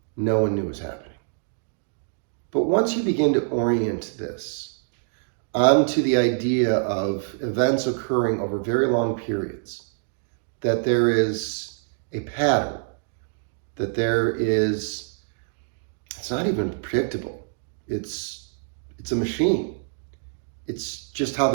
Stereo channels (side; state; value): left; silent; digital silence